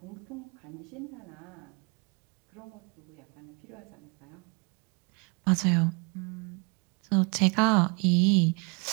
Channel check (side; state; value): left; quieter; 32.5 dB